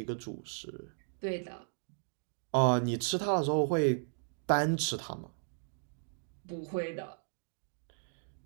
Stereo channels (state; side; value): silent; left; digital silence